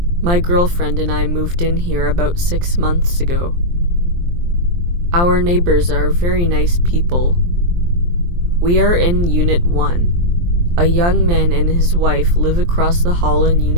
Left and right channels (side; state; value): left; late; 23 ms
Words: My girlfriend and I moved in here about 6 months ago. Our neighbors are very nice people. We are in Unit 1. A young man and his wife live across the hall in